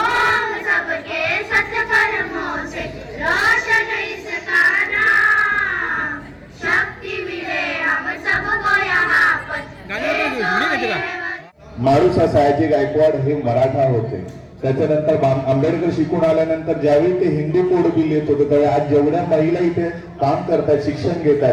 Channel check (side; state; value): both; identical; correlation 1.00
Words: सबके सत्कर्मों से रोशन इसका नाम. शक्ति मिले हम सबको यहाँ पर. मारुसा सयाजी गायकवाड हे मराठा होते. त्याच्यानंतर आंबेडकर शिकून आल्यानंतर ज्यावेळी ते हिंदू कोड बिल येत होतं त्यावेळी आज जेवढ्या महिला इथे काम करतात, शिक्षण